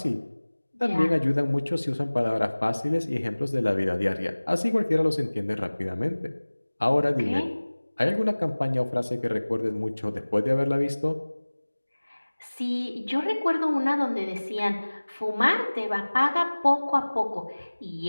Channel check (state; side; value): inverted; both; correlation -1.00